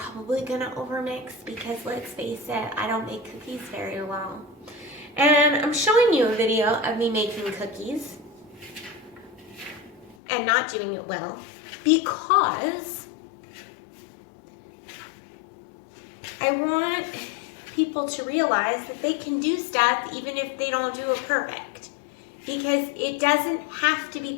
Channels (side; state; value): right; drops out; at 10.2 s